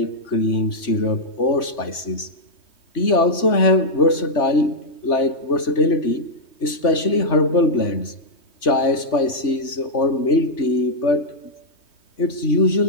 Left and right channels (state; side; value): late; right; 3.5 ms